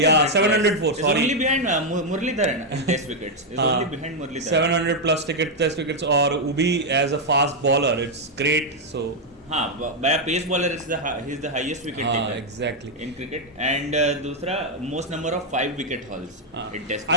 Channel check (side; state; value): both; normal; correlation 0.00